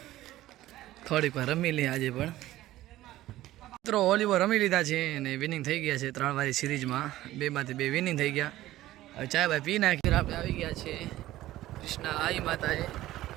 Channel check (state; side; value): quieter; left; 15.4 dB